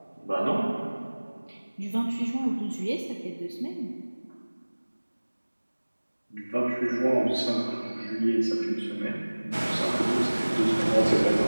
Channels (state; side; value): inverted; both; correlation -1.00